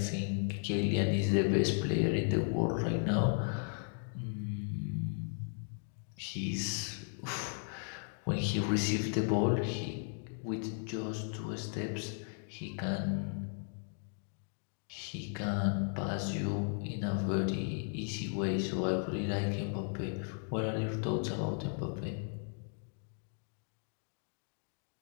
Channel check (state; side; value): silent; right; 54 dB below the other